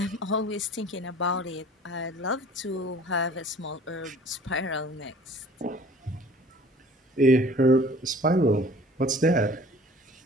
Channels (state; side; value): normal; both; correlation 0.49